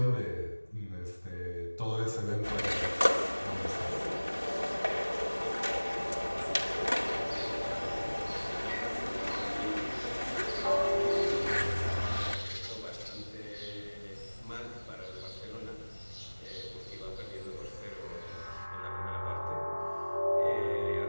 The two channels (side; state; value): both; inverted; correlation -1.00